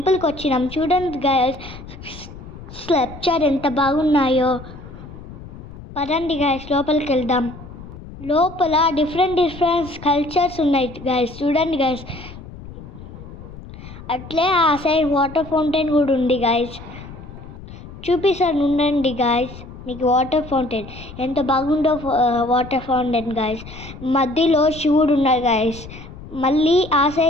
వచ్చినాం. చూడండి గైస్, స్కల్ప్చర్ ఎంత బాగున్నాయో. పదండి గైస్, లోపలికి వెళ్దాం. లోపల డిఫరెంట్ కల్చర్స్ ఉన్నాయి గైస్. చూడండి గైస్, అట్లే ఆ సైడ్ వాటర్ ఫౌంటైన్ కూడా ఉంది గైస్. చూపిస్తాను ఉండండి గైస్. మీకు వాటర్ ఫౌంటైన్ ఎంత బాగుందో. వాటర్ ఫౌంటైన్ గైస్, మధ్యలో శివుడు ఉన్నాడు గైస్. మళ్ళీ ఆ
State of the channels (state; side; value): noise; left; rumble, 15 dB below the sound